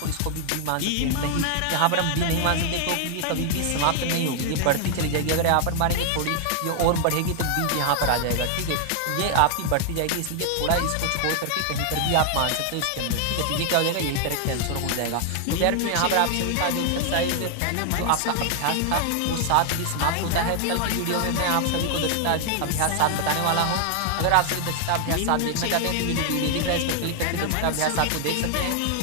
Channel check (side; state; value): both; different; correlation 0.00